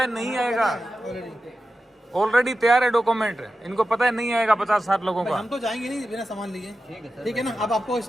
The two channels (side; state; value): both; normal; correlation 0.92